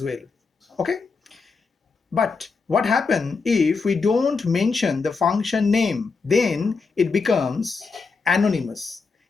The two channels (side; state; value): right; quieter; 4.6 dB